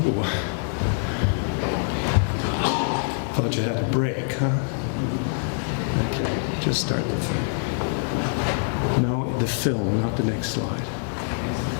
Ooh. Thought you had a break, huh? Okay, just start the film. No, the film, not the next slide.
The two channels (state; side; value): silent; right; 62 dB below the other